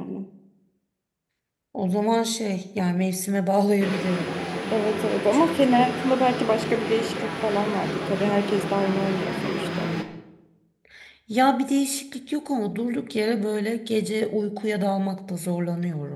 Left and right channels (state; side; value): identical; both; correlation 1.00